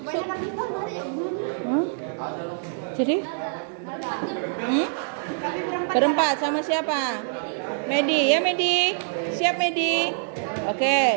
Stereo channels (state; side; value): silent; left; digital silence